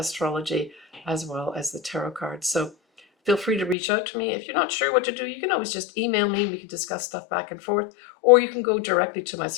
as well as the tarot cards. So feel free to reach out to me. If you're not sure what to do, you can always just email me. We can discuss stuff back and forth, or you can go directly to my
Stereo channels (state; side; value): drops out; right; at 3.8 s